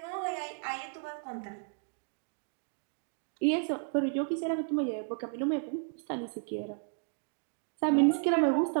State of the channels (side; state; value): left; silent; 56 dB below the other